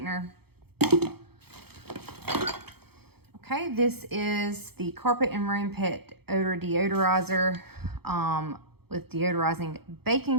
Okay, this is the Carpet and Room Pet Odor Deodorizer with deodorizing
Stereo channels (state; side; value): late; left; 0.96 ms